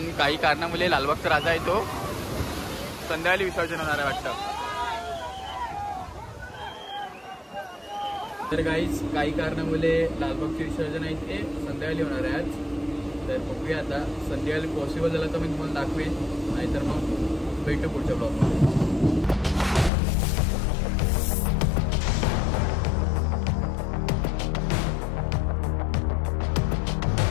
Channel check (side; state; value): right; drops out; at 19.9 s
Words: काही कारणामुळे लालबागचा राजा आहे तो संध्याकाळी विसर्जन होणार आहे वाटतं. तर काही कारणामुळे लालबागचे विसर्जन आहे ते संध्याकाळी होणार आहे आज. तर बघूया आता, संध्याकाळी पॉसिबल झालं तर मी तुम्हाला दाखवेन, नाहीतर मग भेटू पुढच्या ब्लॉगमध्ये.